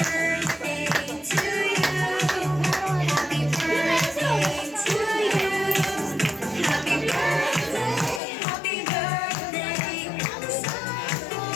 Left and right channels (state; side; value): drops out; right; at 8.2 s